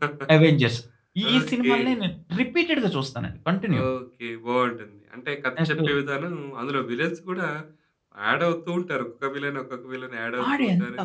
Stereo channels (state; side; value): identical; both; correlation 1.00